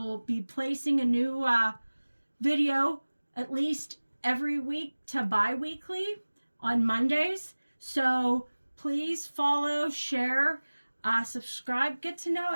be placing a new video at least every week to bi-weekly on Mondays. So please follow, share, subscribe, get to know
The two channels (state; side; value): inverted; both; correlation -1.00